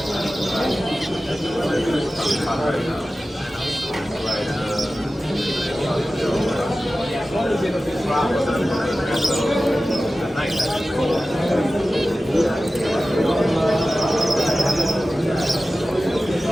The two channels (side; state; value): both; normal; correlation 0.95